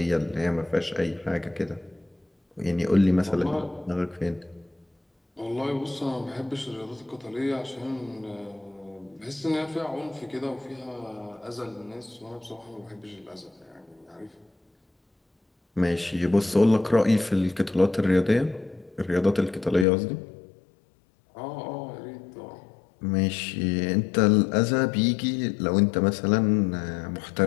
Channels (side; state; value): right; drops out; at 19.9 s